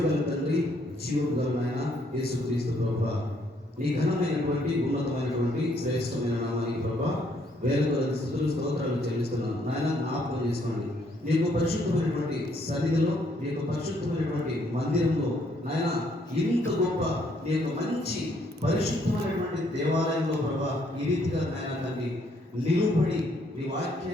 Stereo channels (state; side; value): normal; both; correlation 0.69